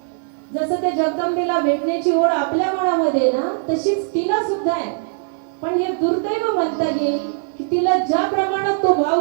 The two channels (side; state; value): left; silent; digital silence